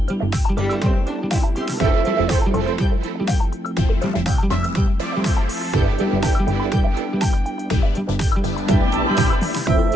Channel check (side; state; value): both; normal; correlation 0.81